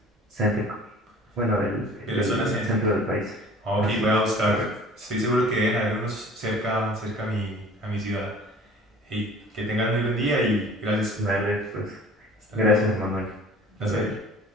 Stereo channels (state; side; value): normal; both; correlation 0.47